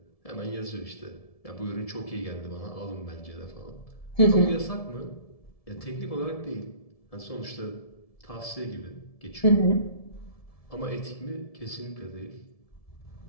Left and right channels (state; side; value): late; right; 1.7 ms